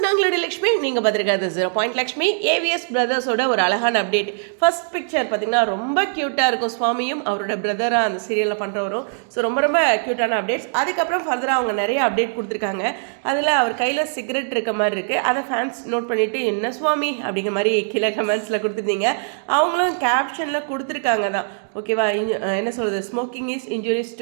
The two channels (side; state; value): left; silent; digital silence